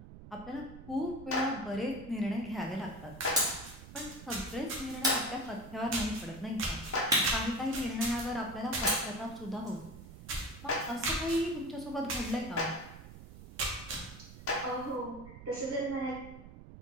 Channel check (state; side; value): noise; right; rumble, 15 dB below the sound